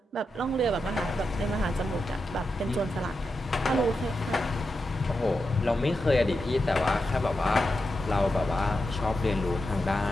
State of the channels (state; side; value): normal; both; correlation 0.88